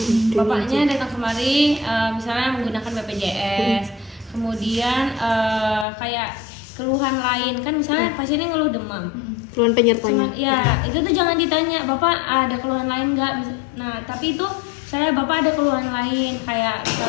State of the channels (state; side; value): drops out; right; at 5.9 s